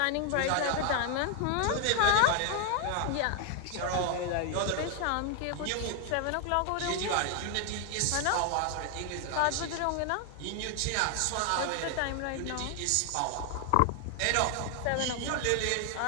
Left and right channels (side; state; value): both; different; correlation 0.00